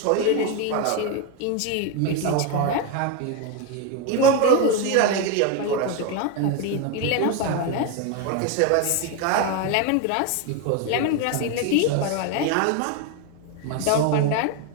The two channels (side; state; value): both; different; correlation 0.02